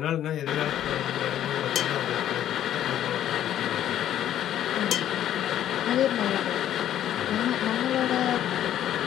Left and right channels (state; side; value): quieter; right; 11.3 dB